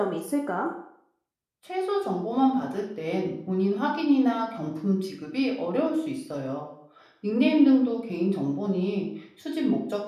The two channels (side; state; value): both; identical; correlation 1.00